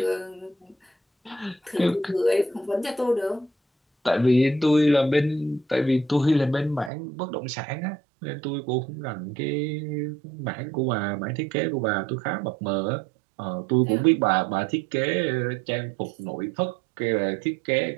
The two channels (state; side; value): drops out; left; at 6.9 s